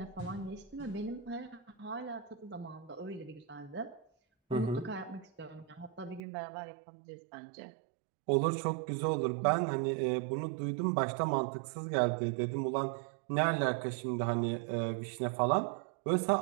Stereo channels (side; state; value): left; drops out; at 6.2 s